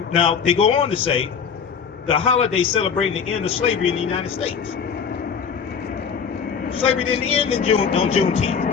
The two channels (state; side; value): quieter; right; 6.6 dB